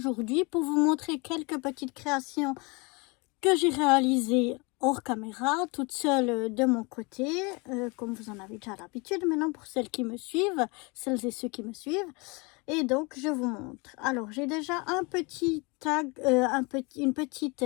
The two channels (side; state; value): right; quieter; 28.5 dB